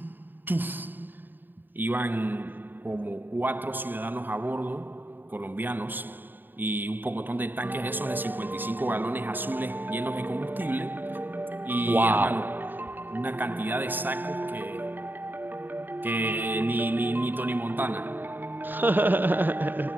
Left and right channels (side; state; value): left; late; 0.092 ms